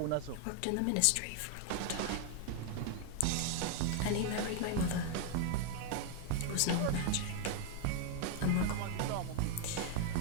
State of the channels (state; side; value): different; both; correlation 0.00